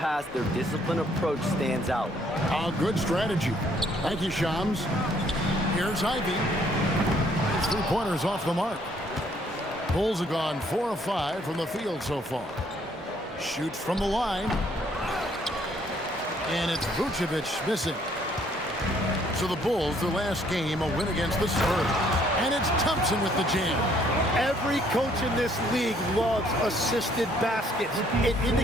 their disciplined approach stands out. A good strategy. Thank you, Shams. Here's Ivy. His 3-pointers off the mark. Bulls have gone 4 of 5 from the field so far. Shoots from the line. And it's Vucevic missing. So the Bulls, their last game, a win against the Spurs. And it's Thompson with the jam. Every coach in this league loves assisted baskets. It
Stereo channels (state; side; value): normal; both; correlation 0.65